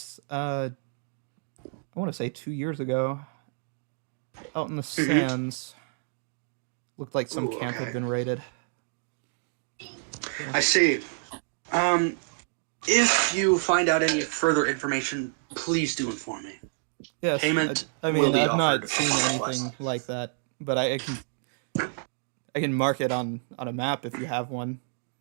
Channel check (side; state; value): left; silent; digital silence